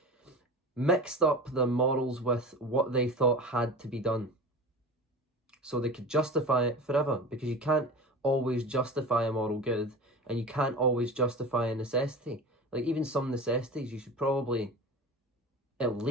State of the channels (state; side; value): normal; both; correlation 0.33